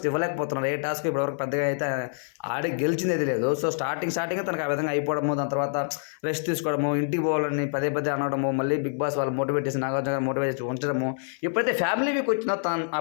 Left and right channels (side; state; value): right; silent; 57 dB below the other